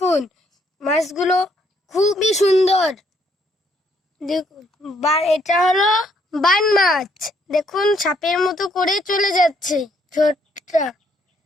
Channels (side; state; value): both; normal; correlation 0.70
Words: মাছগুলো খুবই সুন্দর। দেখুন, এটা হলো বান মাছ। দেখুন, সাপের মতো করে চলে যাচ্ছে ছোটটা।